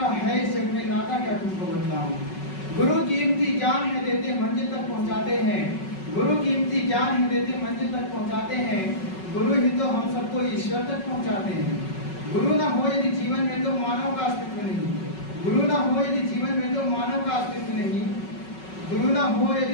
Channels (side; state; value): right; late; 5.4 ms